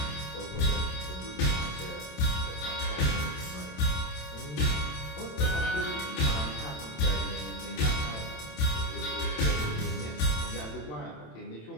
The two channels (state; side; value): late; right; 27 ms